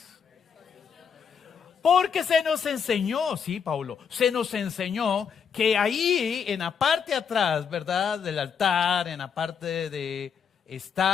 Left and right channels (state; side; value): quieter; right; 6.9 dB